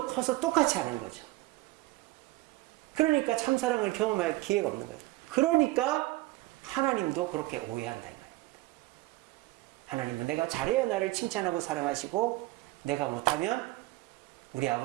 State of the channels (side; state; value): left; quieter; 19.5 dB